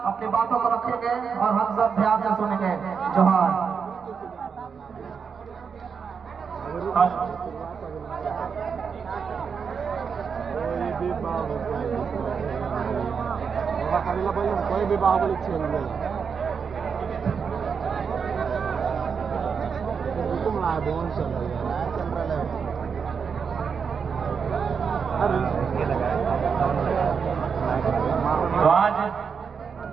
अपनी बातों को रखेंगे और हम सब ध्यान से सुनेंगे। जोहार। कोई भी बाहुबली छेल तो आज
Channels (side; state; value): left; quieter; 6.2 dB